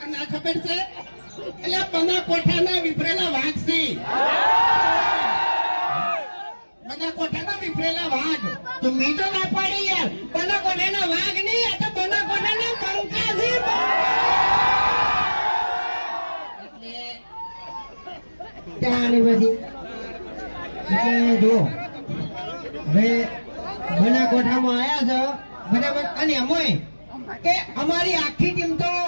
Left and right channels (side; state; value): both; inverted; correlation -1.00